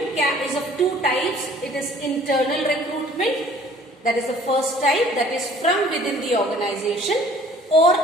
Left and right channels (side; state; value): both; normal; correlation 0.53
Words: is of 2 types. It is internal recruitment, that is the first type, that is from within the organization, or